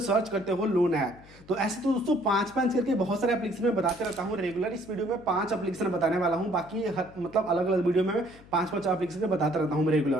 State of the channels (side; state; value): left; noise; hum, 23 dB below the sound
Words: करते हो लोन ऐप। तो ऐसे तो दोस्तों 5 करके बहुत सारे एप्लीकेशन में बताते रहता हूँ रेगुलर। इस वीडियो में 5 एप्लीकेशन बताने वाला हूँ, बाकी मतलब अलग अलग वीडियो में 5 एप्लीकेशन बताता रहता हूँ